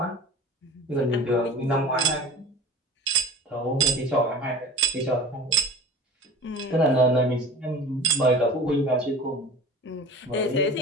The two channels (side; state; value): both; normal; correlation 0.39